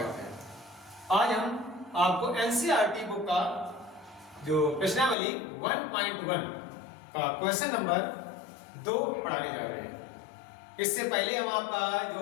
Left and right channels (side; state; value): right; drops out; at 5.2 s